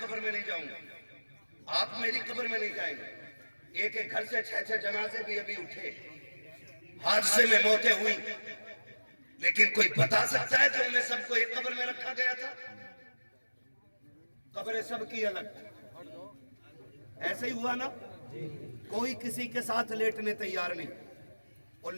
میں نہیں جاؤں گا، آپ میری قبر میں نہیں جائیں گے۔ ایک ایک گھر سے 6 جنازے بھی ابھی اٹھے، حادثے میں موتیں ہوئی، لیکن کوئی بتا سکتا ہے کہ انہیں سب کو ایک قبر میں رکھا گیا تھا؟ قبریں سب کی الگ، ایسے ہی ہوا نا، کوئی کسی کے ساتھ لیٹنے تیار نہیں اور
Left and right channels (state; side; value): inverted; both; correlation -1.00